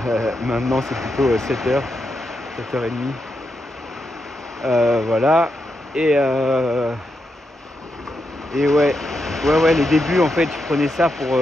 Maintenant c'est plutôt 7 heures, 7h30. Voilà. Et ouais, les débuts en fait, je prenais ça pour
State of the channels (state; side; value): normal; both; correlation 0.84